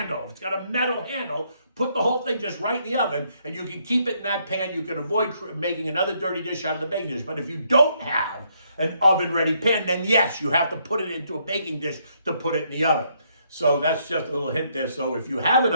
If it's got a metal handle, put the whole thing just right in the oven, and you can keep it in that pan. You can avoid making another dirty dish out of the baking dish. But if you don't have an oven-ready pan, then yes, you have to put it into a baking dish to put it in the oven. So that's just a little hint there. So if you have an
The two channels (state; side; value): inverted; both; correlation -0.72